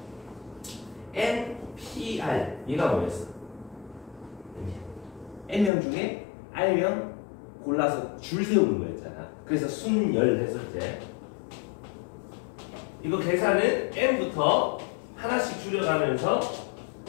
NPR 얘가 뭐였어? N명 중에 R명 골라서 줄 세우는 거였잖아. 그래서 순열 했었지. 이거 계산은 N부터 하나씩 줄여가면서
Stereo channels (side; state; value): right; drops out; at 5.7 s